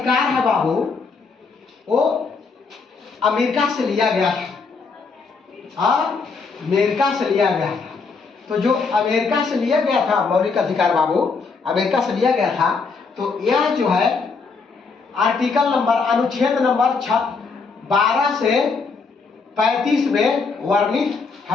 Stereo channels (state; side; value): quieter; right; 4.7 dB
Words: है बाबू, वो अमेरिका से लिया गया था और अमेरिका से लिया गया था। तो जो अमेरिका से लिया गया था मौलिक अधिकार बाबू, अमेरिका से लिया गया था, तो यह जो है आर्टिकल नंबर, अनुच्छेद नंबर 12 से 35 में वर्णित